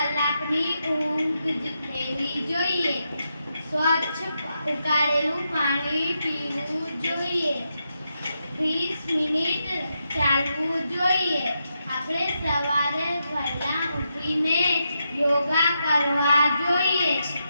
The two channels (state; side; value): inverted; both; correlation -0.84